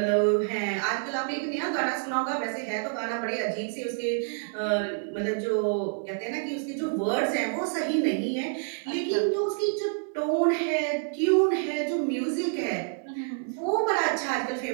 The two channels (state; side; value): silent; left; 59 dB below the other